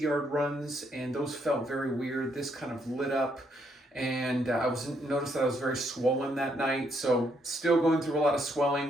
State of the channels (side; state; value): both; normal; correlation 0.74